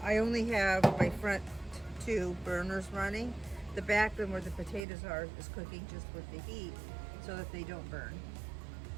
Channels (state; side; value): drops out; left; at 4.9 s